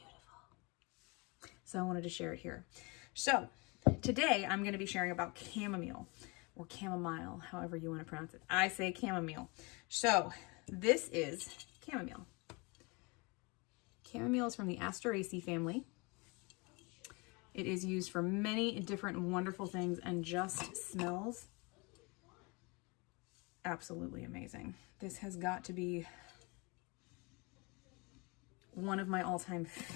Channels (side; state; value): right; quieter; 28.4 dB